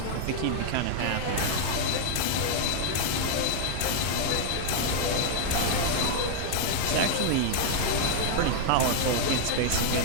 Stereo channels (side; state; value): both; different; correlation -0.01